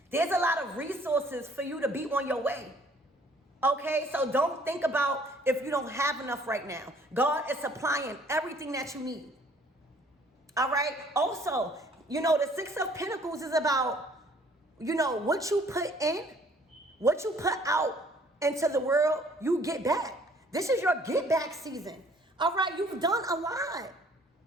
There's a lot of resources for you to be on your way. Okay, so don't think about if you don't have enough right now. God is supplying everything that you need. All right, also, the Six of Pentacles is about, what you put in, what you put out into the world, you get back. This is your get back season. All right, you've done a lot.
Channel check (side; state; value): both; normal; correlation 0.58